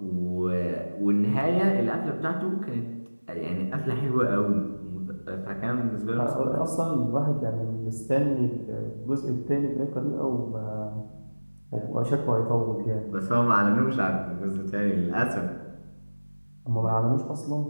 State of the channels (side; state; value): both; inverted; correlation -1.00